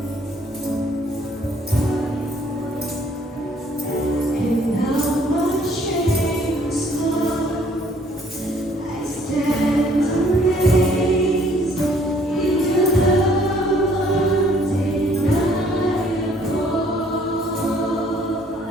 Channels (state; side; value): normal; both; correlation 0.61